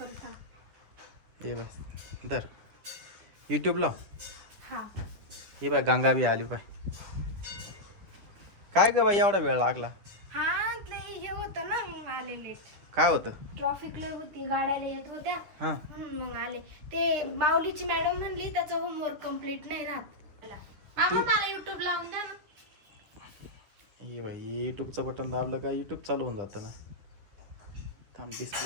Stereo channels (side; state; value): left; late; 10 ms